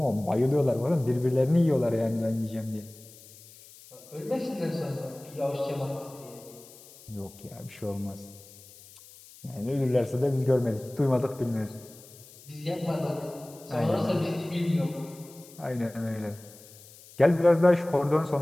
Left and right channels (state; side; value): noise; left; hiss, 21 dB below the sound